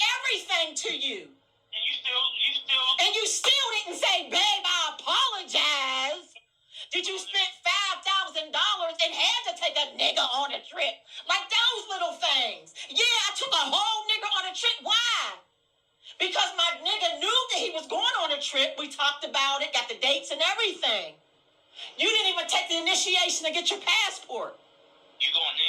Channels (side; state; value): both; identical; correlation 1.00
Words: everything to you. And you still didn't say, babe, I apologize. Did you spend $5,000 and had to take a nigga on a trip? Like those little things. Yeah, I took a whole nigga on a trip. Why? Because my nigga knew that he was going on a trip. We talked about it, got the dates and everything. You didn't even take the initiation to get your passport. You go on